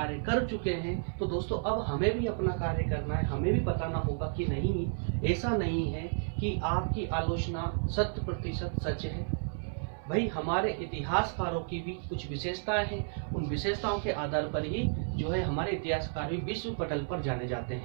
कर चुके हैं, तो दोस्तों अब हमें भी अपना कार्य करना है। हमें भी बताना होगा कि नहीं, ऐसा नहीं है कि आपकी आलोचना 100% सच है। भाई हमारे इतिहासकारों की भी कुछ विशेषताएं हैं, उन विशेषताओं के आधार पर ही जो है हमारे इतिहासकार भी विश्व पटल पर जाने जाते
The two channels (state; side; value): silent; left; 56 dB below the other